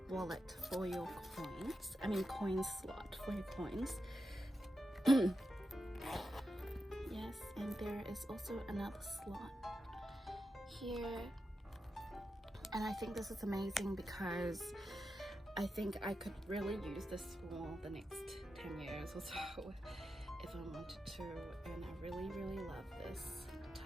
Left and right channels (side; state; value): both; normal; correlation 0.88